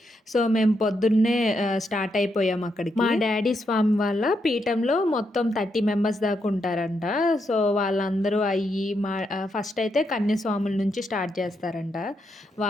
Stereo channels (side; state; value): both; normal; correlation 0.81